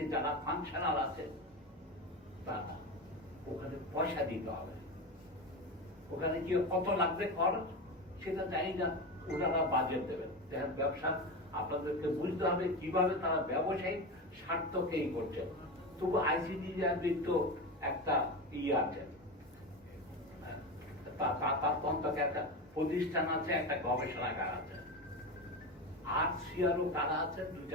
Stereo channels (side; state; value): both; normal; correlation 0.21